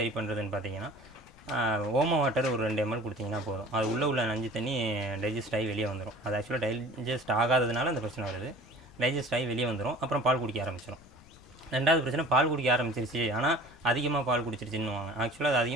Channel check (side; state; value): left; noise; rumble, 23 dB below the sound